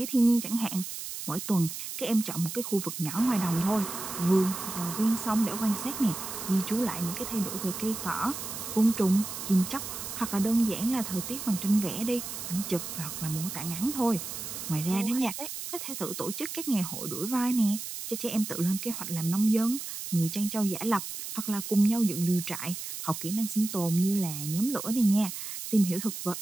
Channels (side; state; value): right; noise; hiss, 7 dB below the sound